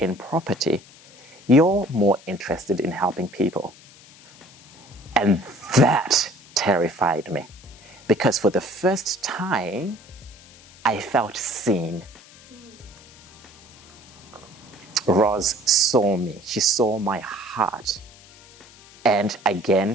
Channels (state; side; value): noise; left; hiss, 23 dB below the sound